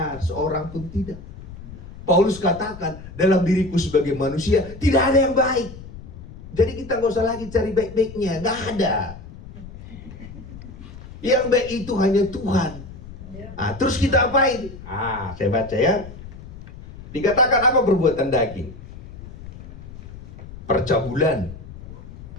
seorang pun tidak. Paulus katakan dalam diriku sebagai manusia tidak ada yang baik. Jadi kita gak usah lagi cari baik-baiknya, gak ada. Yang baik itu hanya Tuhan. Terus kita apain? Saya baca ya. Dikatakan apa perbuatan daging? Percabulan,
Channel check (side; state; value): left; noise; rumble, 15 dB below the sound